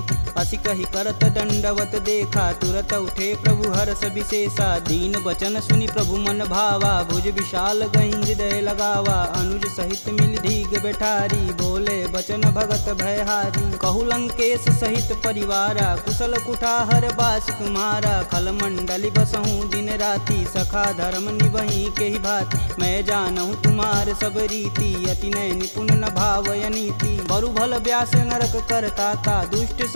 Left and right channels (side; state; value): both; inverted; correlation -1.00